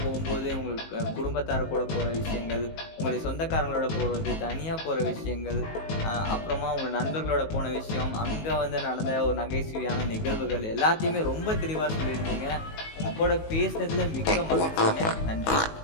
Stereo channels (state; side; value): late; right; 19 ms